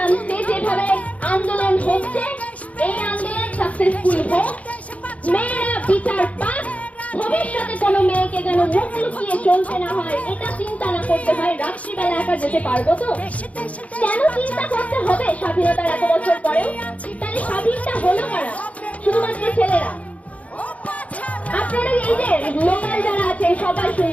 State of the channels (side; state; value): right; late; 0.067 ms